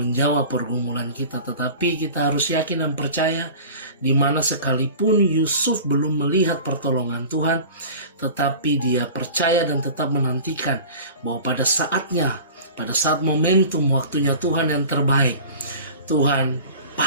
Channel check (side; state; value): both; inverted; correlation -0.39